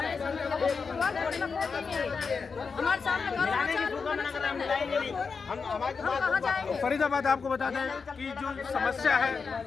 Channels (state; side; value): quieter; right; 5.2 dB